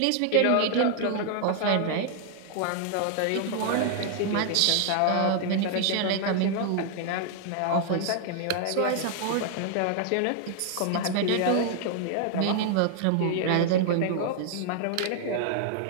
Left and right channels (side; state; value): both; different; correlation 0.00